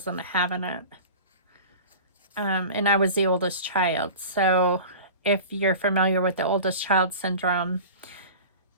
having it. And I was the oldest child. So if you're familiar with the oldest child syndrome,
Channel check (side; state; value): both; inverted; correlation -0.37